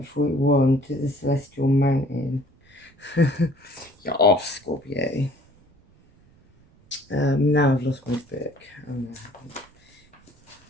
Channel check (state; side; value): noise; right; rumble, 30 dB below the sound